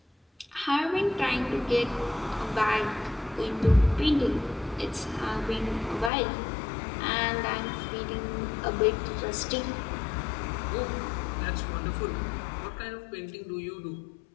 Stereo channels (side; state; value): right; drops out; at 6.1 s